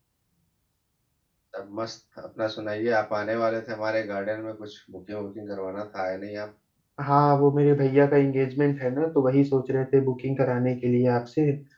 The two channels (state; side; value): identical; both; correlation 1.00